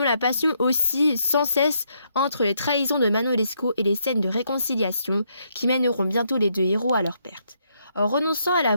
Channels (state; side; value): inverted; both; correlation -0.76